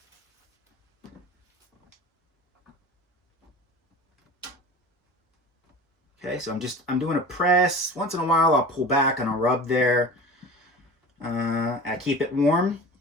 Okay, so I'm doing a press. Once in a while I'll pull back and I'll rub there. I keep it warm.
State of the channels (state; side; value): normal; both; correlation 0.37